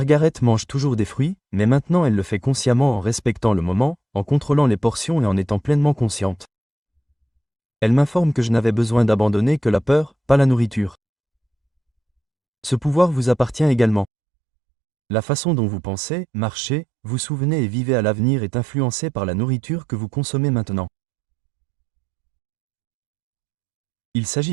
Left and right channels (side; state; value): left; drops out; at 14.1 s